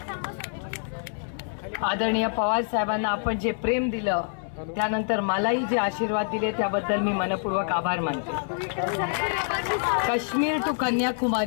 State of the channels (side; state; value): right; silent; 61 dB below the other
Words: आदरणीय पवार साहेबांना आपण जे प्रेम दिलं, त्यानंतर मलाही जे आशीर्वाद दिले त्याबद्दल मी मनपूर्वक आभार मानते। काश्मीर टू